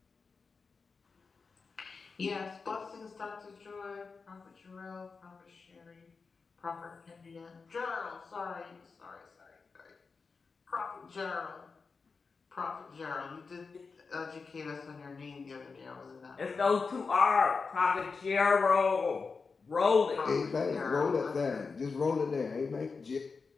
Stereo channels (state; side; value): quieter; right; 4.7 dB